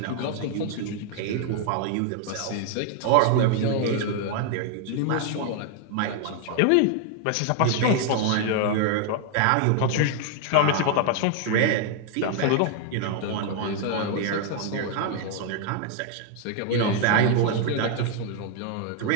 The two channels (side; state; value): both; different; correlation 0.00